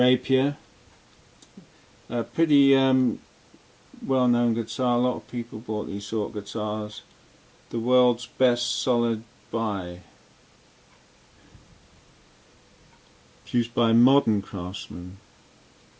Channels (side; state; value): both; identical; correlation 1.00